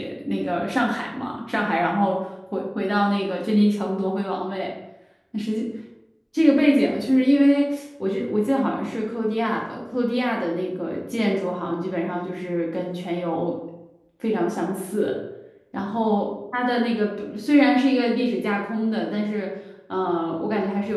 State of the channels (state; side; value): identical; both; correlation 1.00